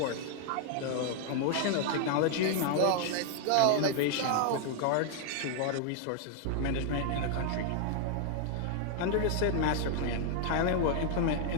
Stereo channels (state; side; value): different; both; correlation 0.00